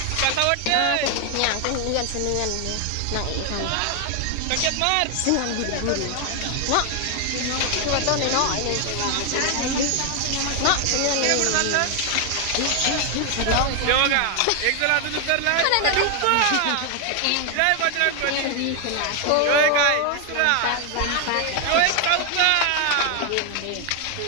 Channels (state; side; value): different; both; correlation 0.01